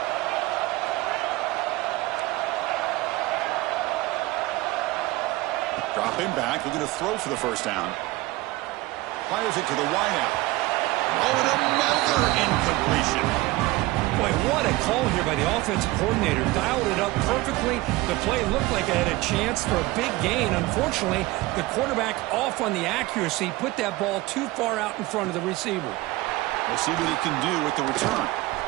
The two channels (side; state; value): left; quieter; 19.6 dB